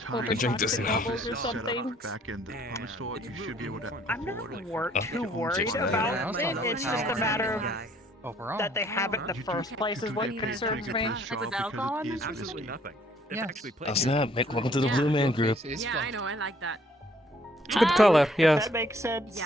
drink this toxic now. levels or something. Back in the comic store, you should be able to. I'm not too worried about it. It's just a matter of Overall. that they have it in the first place is what concerns me. With alcohol in it? Absolutely nothing. They've actually played Oh snap! Welcome to the Blue Man Group. Yeah, I know. I like that. It's a good color, yes. That makes sense.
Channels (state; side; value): normal; both; correlation 0.62